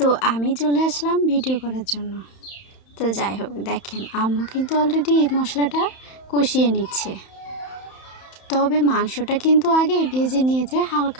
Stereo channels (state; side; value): late; right; 31 ms